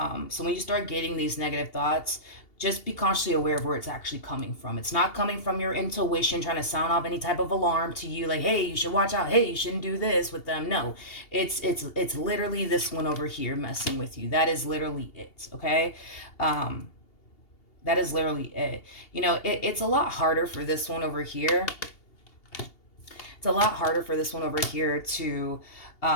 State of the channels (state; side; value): late; right; 2.8 ms